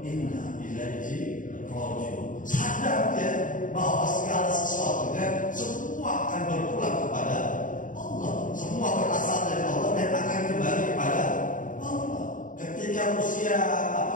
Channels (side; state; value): right; late; 0.38 ms